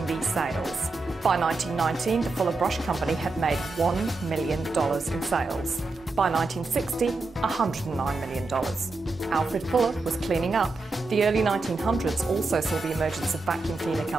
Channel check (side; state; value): left; quieter; 3.5 dB